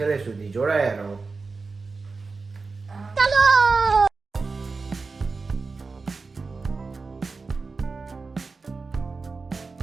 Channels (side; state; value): left; quieter; 4.2 dB